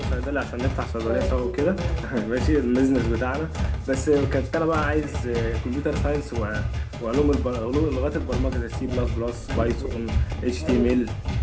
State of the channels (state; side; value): identical; both; correlation 1.00